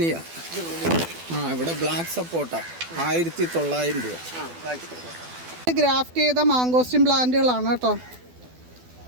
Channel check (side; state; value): left; late; 12 ms